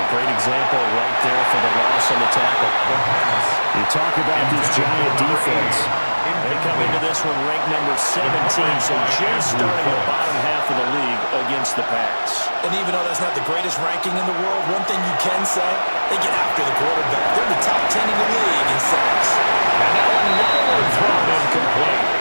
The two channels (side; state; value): both; inverted; correlation -1.00